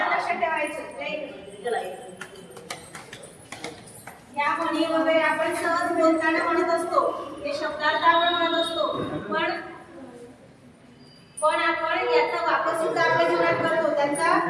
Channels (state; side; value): identical; both; correlation 1.00